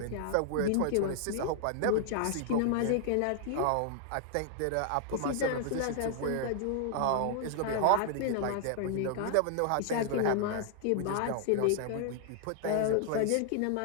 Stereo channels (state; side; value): different; both; correlation -0.01